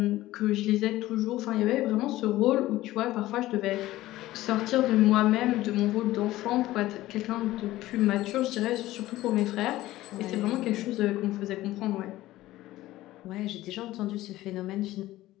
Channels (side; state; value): right; quieter; 16.2 dB